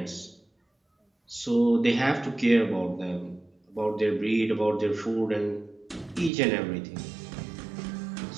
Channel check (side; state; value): left; drops out; at 6.3 s